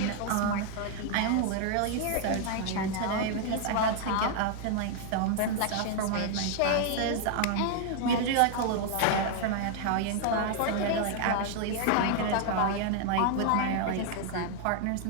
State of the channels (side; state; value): both; different; correlation 0.00